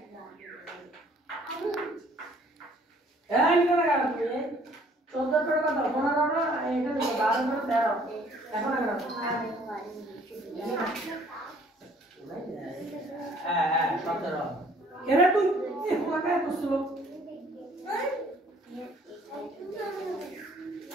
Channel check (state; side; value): normal; both; correlation 0.58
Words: এই নিকো লাগা তুমি 14 করে কথা 15 না এটা দেখো 12 করে 13 এখন লাগা হ্যাঁ 17 এরা তুই লাগা তো স্লো